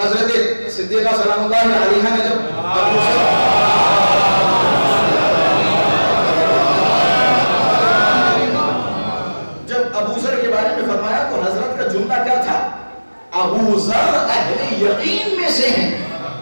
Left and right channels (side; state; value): both; inverted; correlation -1.00